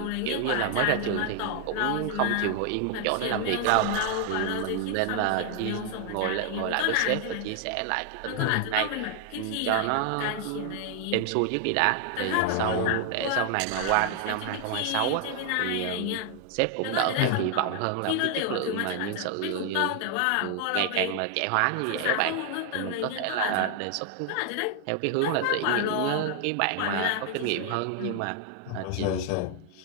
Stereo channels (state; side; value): different; both; correlation 0.00